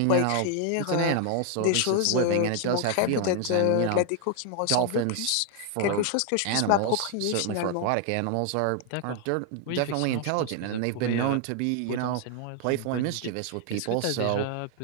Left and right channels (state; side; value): different; both; correlation 0.01